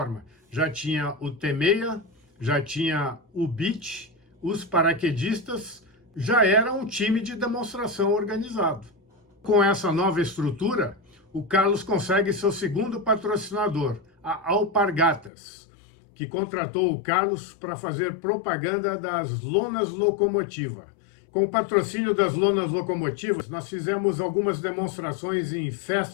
Já tinha o T-6, já tinha o Beach, os paraquedistas, já era um time de demonstração organizado. Com essa nova estrutura, o Carlos consegue seu segundo patrocinador, a Alpargatas, que contratou o Carlos para fazer propaganda das lonas locomotiva. Com o patrocínio das lonas locomotivas, nós fizemos algumas demonstrações em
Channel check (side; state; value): right; drops out; at 15.3 s